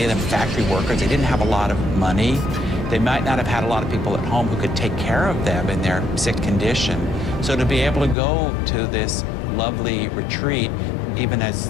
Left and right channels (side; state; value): right; drops out; at 8.2 s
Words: of them, factory workers. They didn't have a lot of money. They might not have had a lot of people at home who could take care of them in their sick condition. So to be able to go to this lovely retreat, even as